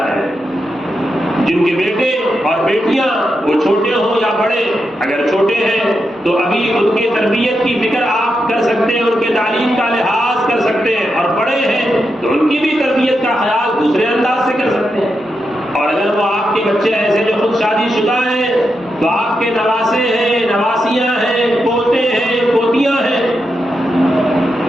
ہے، جن کے بیٹے اور بیٹیاں وہ چھوٹے ہوں یا بڑے، اگر چھوٹے ہیں تو ابھی ان کی تربیت کی فکر آپ کر سکتے ہیں، ان کے تعلیم کا لحاظ کر سکتے ہیں، اور بڑے ہیں تو ان کی بھی تربیت کا خیال دوسرے انداز سے کر سکتے ہیں۔ اور اگر وہ آپ کے بچے ایسے جو خود شادی شدہ ہیں تو آپ کے نواسے ہیں، نواسیاں ہیں، پوتے ہیں، پوتیاں ہیں،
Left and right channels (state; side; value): normal; both; correlation 0.86